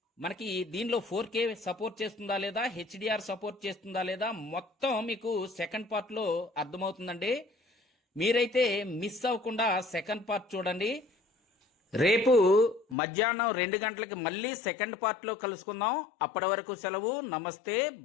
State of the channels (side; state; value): right; drops out; at 13.0 s